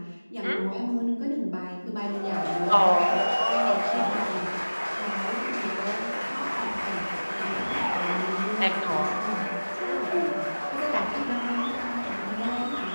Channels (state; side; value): inverted; both; correlation -1.00